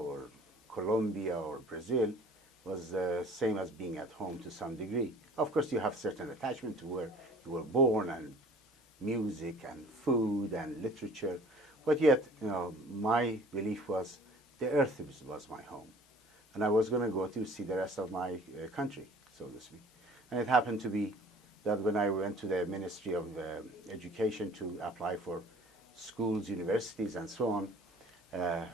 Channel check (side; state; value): both; normal; correlation 0.49